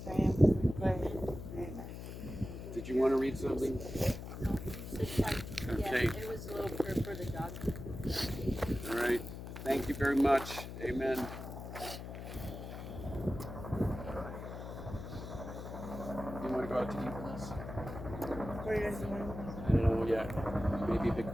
Did you want to read something? Okay. It was a little prayer for the dog. All right. Thank you very much. Amen. You want to go out to eat with us? Where do you guys want? I don't know yet. Maybe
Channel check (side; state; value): left; noise; hum, 9 dB below the sound